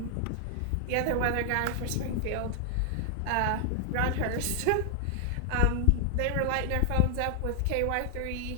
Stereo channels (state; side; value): different; both; correlation 0.00